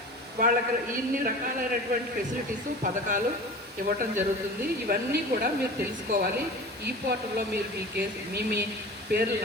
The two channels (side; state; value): both; normal; correlation 0.36